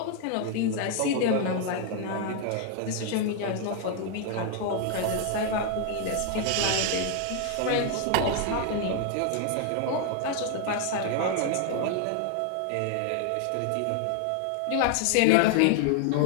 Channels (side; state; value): both; different; correlation 0.00